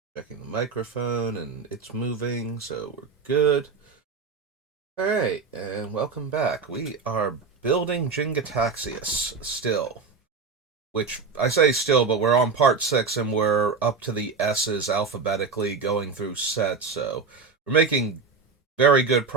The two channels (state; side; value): quieter; left; 5.0 dB